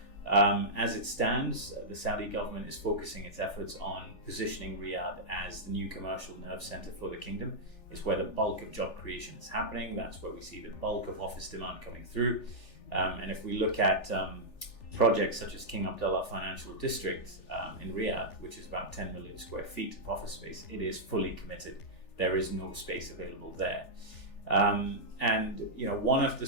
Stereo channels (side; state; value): right; late; 3.4 ms